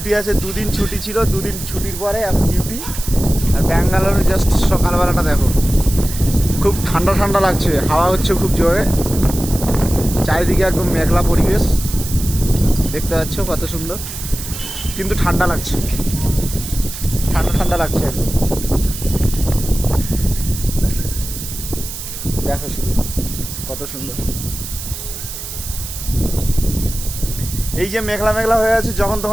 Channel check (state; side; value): noise; right; hiss, 9 dB below the sound